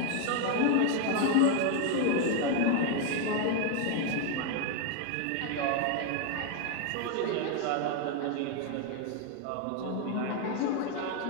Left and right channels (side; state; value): both; different; correlation 0.01